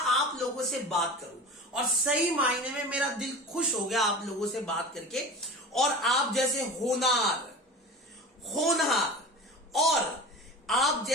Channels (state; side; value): normal; both; correlation 0.33